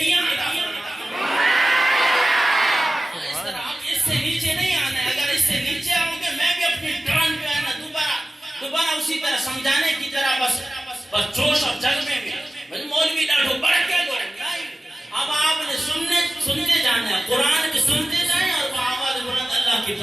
عطا فرماتا ہے. اس طرح آپ اس سے نیچے نہیں آنا ہے. اگر اس سے نیچے آؤ گے میں بھی اپنی ٹرن جو ہے نا دوبارہ اسی طرح سمجھانے کی طرح بس جوش اور جذبے میں مولوی ڈاٹو بڑھ کے دو. اب آپ نے سنتے جانا ہے, قرآن بھی سنتے جائیں اور وہ آواز بلند اللہ کی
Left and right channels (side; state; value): both; normal; correlation 0.96